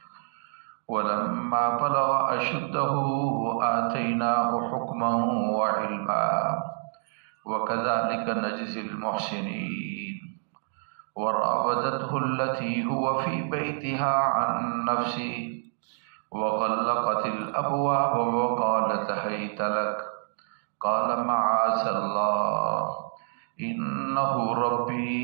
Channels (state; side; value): silent; left; digital silence